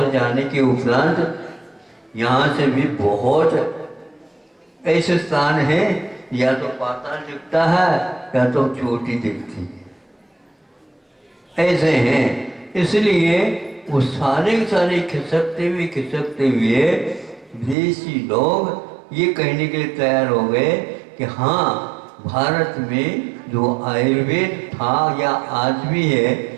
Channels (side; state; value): left; drops out; at 17.8 s